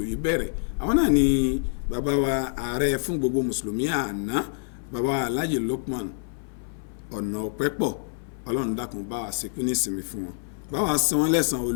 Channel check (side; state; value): right; silent; 56 dB below the other